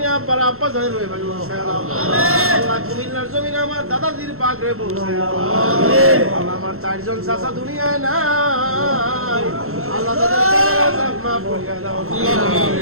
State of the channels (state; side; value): late; left; 0.62 ms